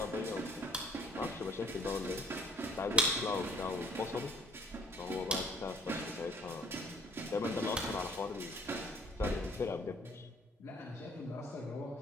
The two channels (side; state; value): both; normal; correlation 0.57